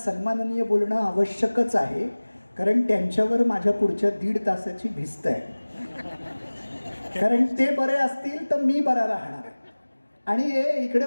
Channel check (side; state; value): both; inverted; correlation -1.00